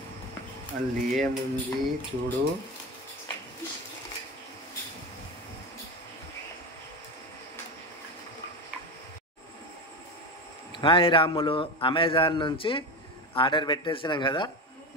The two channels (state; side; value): normal; both; correlation 0.21